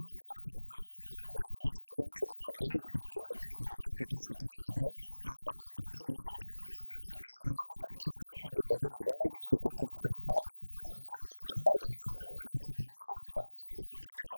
ans, c'est trop. Vous le savez très bien que le Rwanda est cité nommément dans les rapports Mapping et autres. Et maintenant, là, qu'est-ce qui a encore fait déborder la vase? C'est cette incursion du M23 à Kibumba, près de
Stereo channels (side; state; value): both; inverted; correlation -1.00